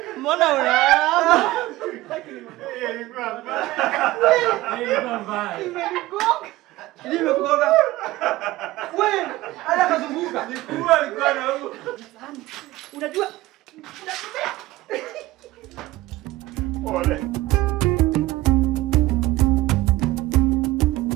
Mbona unaama? Nimekugonga. Wewe, ala kazunguka. Unajua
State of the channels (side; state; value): left; quieter; 17.8 dB